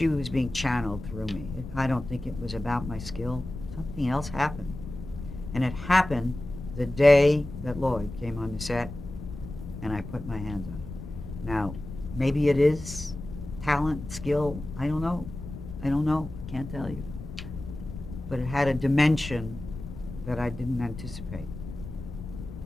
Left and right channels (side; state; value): left; noise; rumble, 11 dB below the sound